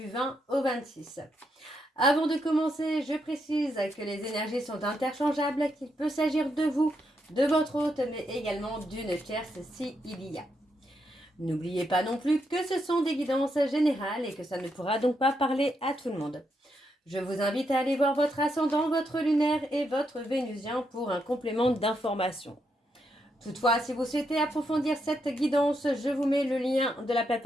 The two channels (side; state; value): both; normal; correlation 0.80